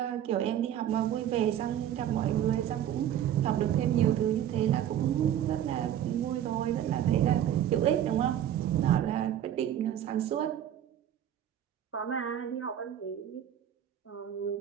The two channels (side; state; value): left; quieter; 10.8 dB